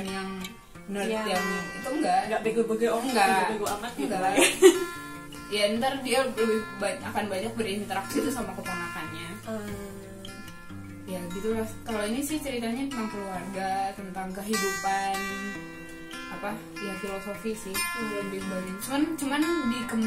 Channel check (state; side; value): identical; both; correlation 1.00